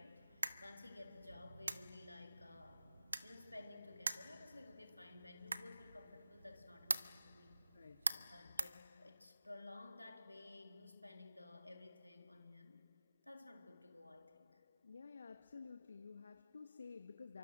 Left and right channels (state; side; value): inverted; both; correlation -0.94